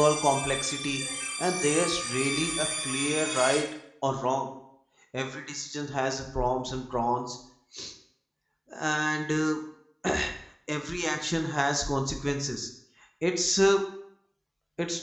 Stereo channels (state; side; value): identical; both; correlation 1.00